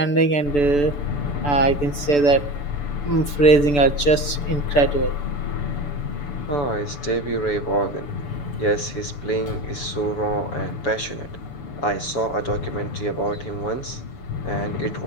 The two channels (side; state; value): right; late; 6.9 ms